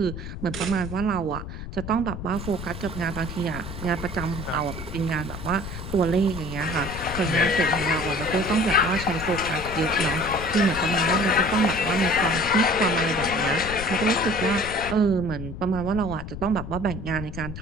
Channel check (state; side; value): noise; left; rumble, 9 dB below the sound